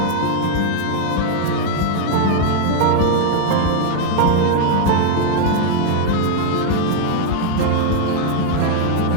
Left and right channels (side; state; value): both; different; correlation 0.01